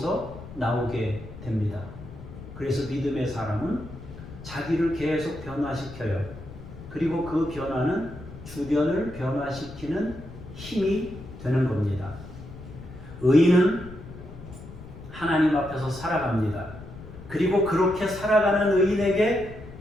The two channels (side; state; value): left; noise; rumble, 14 dB below the sound